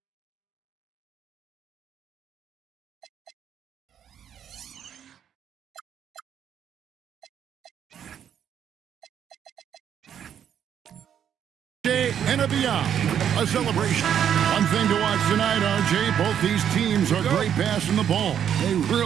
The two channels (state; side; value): quieter; left; 9.1 dB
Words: and a beyond, a celebration. One thing to watch tonight, RJ, both these teams are great passing the ball. They